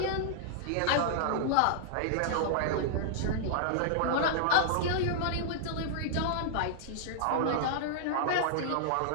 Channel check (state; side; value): different; both; correlation -0.01